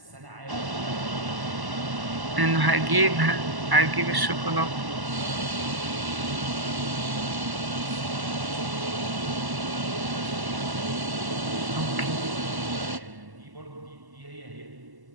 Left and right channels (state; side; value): late; left; 1.1 ms